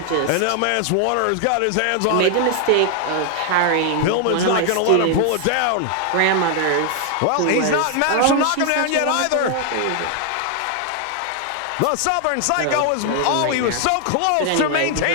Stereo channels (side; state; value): both; different; correlation 0.00